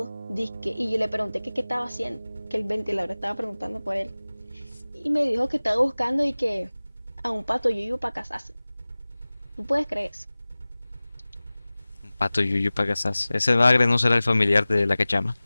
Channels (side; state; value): both; inverted; correlation -0.99